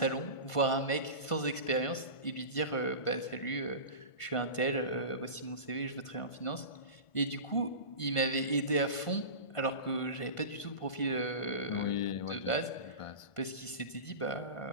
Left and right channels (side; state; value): right; late; 1.5 ms